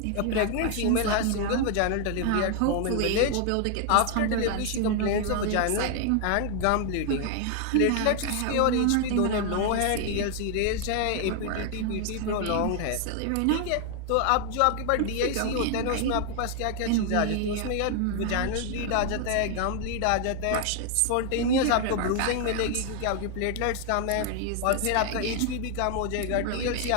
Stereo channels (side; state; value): both; different; correlation 0.00